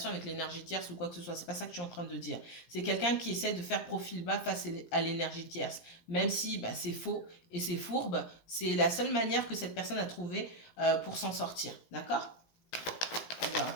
avec l'énergie tierce ou quoi que ce soit. C'est pas ça que je suis en train de dire. C'est quelqu'un qui essaie de faire profil bas face à l'énergie tierce. Même si bah, c'est faux et c'est fourbe, c'est la seule manière que cette personne a trouvé pour s'en sortir. D'accord? Alors,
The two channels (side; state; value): right; late; 17 ms